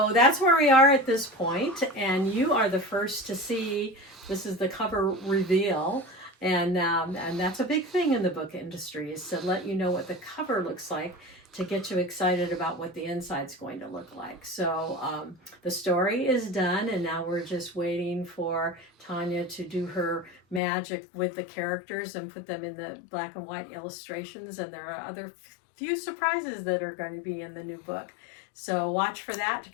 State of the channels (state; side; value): drops out; right; at 20.6 s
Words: that's where we are at this point, and you are the first to see. This is the cover reveal, and that's a big thing in the book industry, is to let you know what the cover looks like, to get you excited about what the inside's going to look like. So the story is done, and now we're just waiting for Tanja to do her magic with the characters and put them in the black and white illustrations, and there are other few surprises that are going to be in the new book. So watch for that to